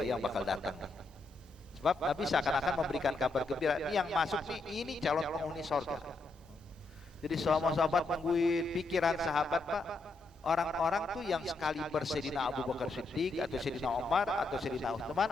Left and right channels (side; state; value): right; quieter; 3.2 dB